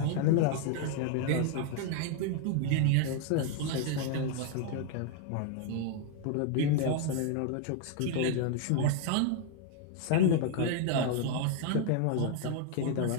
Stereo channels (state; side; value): different; both; correlation 0.00